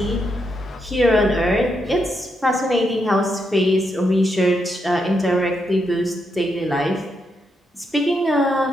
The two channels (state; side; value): normal; both; correlation 0.81